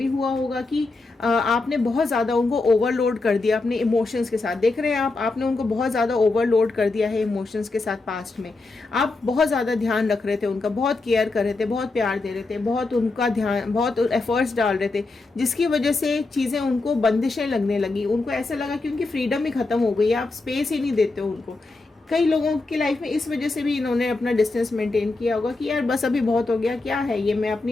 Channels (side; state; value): right; quieter; 3.5 dB